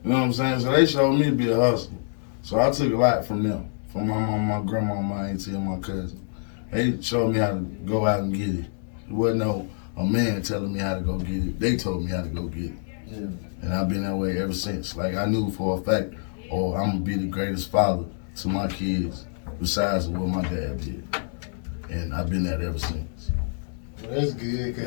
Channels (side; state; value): right; silent; digital silence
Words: You know what I'm saying? So they showed me to be a hustler. So I took a lot from them. From my mom, my grandma, my auntie, and my cousin. They showed me how to go out and get it. There wasn't a man telling me how to go get it. They told me how to go get it. Yeah. And I've been that way ever since. Like, I knew for a fact, I'm going to be the greatest father to my kids besides what my dad did. And I've been that ever since. Well, that's good,